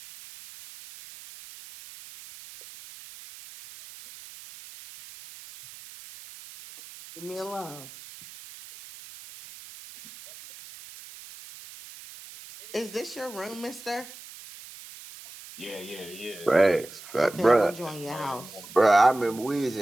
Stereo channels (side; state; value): right; noise; hiss, 17 dB below the sound